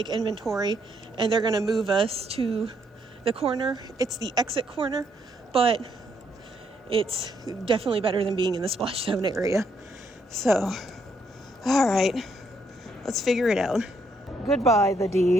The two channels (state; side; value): normal; both; correlation 0.73